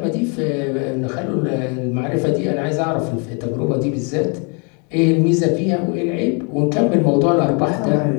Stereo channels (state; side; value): quieter; right; 35.9 dB